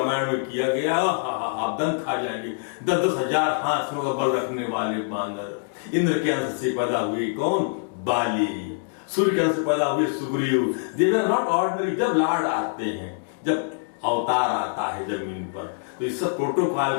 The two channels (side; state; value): right; silent; digital silence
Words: में किया गया। आप दंत खा जाएंगे। 10,000 हाथियों का बल रखने वाले बानर। इंद्र के अंश से पैदा हुए कौन? बाली। सूर्य के अंश से पैदा हुए सुग्रीव। दे वर नॉट ऑर्डिनरी। जब लॉर्ड आते हैं, जब अवतार आता है जमीन पर, तो इस सब